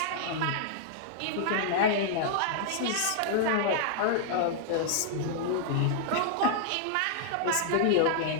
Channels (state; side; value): different; both; correlation -0.01